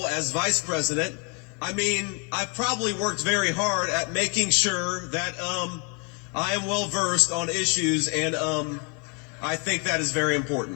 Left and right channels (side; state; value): right; quieter; 35.1 dB